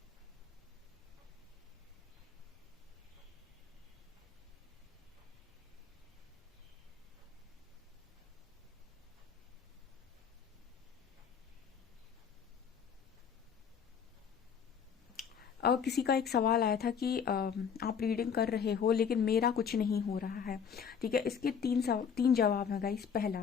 किसी का एक सवाल आया था कि आप रीडिंग कर रहे हो लेकिन मेरा कुछ नहीं हो रहा है, ठीक है। इसके तीन जवाब हैं गाइस। पहला,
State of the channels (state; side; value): quieter; right; 7.1 dB